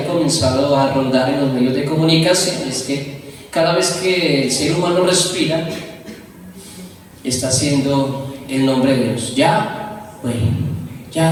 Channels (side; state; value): both; identical; correlation 1.00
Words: comenzado a rondar en los medios de comunicación es que cada vez que el ser humano respira, está haciendo el nombre de Dios. Yahweh.